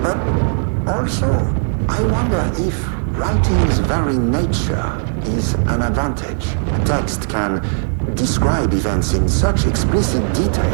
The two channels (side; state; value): left; silent; digital silence